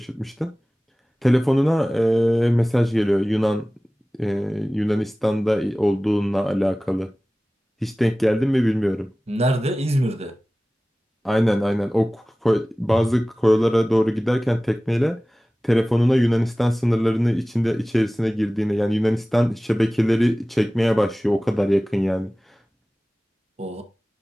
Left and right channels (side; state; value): both; normal; correlation 0.98